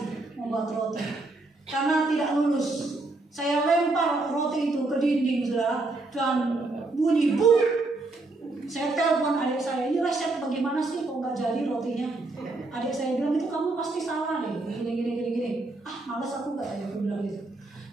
membuat roti. Karena tidak lulus. Saya lempar roti itu ke dinding, saudara. Dan bunyi buk. Saya telepon adik saya, ini resep bagaimana sih kok nggak jadi rotinya? Adik saya bilang, itu kamu pasti salah deh, gini. Malas aku nggak ya, aku bilang gitu.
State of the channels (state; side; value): quieter; left; 3.2 dB